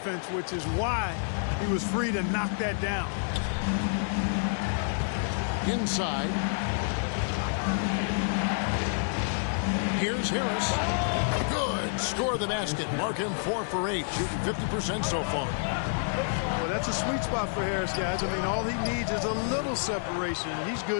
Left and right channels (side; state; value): right; silent; digital silence